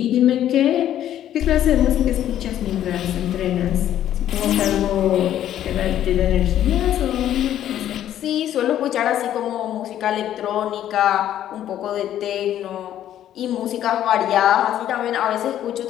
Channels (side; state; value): right; quieter; 11.5 dB